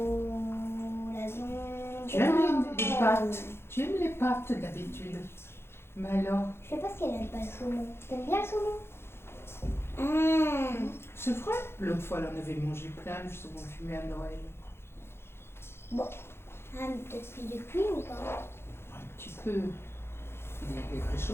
l'avion... Tu aimes les pâtes? Tu aimes les pâtes d'habitude? Mais alors? Je sais pas si elle aime pas le saumon. T'aimes bien le saumon? C'est vrai? L'autre fois, elle en avait mangé plein, le saumon fumé à Noël. Bon. Ah, mais peut-être plus de cuit ou pas? Un petit peu. Il est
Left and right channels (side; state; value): right; late; 0.12 ms